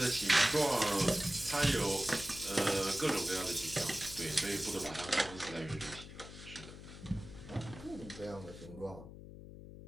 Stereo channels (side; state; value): left; noise; hum, 14 dB below the sound